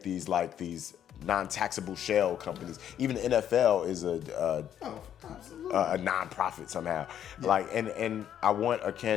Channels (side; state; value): right; quieter; 9.9 dB